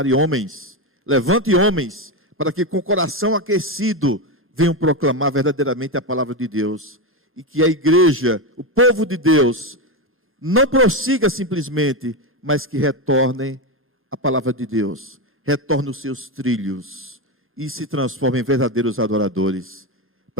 homens, levante homens, para que com o coração aquecido venham proclamar verdadeiramente a palavra de Deus. E que a igreja, o povo de Deus, não prossiga simplesmente, mas que retornem a palavra de Deus, retornem os seus trilhos e se transformem em verdadeiros adoradores,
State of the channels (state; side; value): normal; both; correlation 0.12